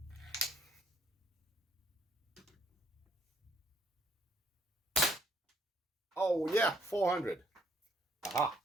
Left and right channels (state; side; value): normal; both; correlation 0.67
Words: Oh, Oh yeah, 400. Aha.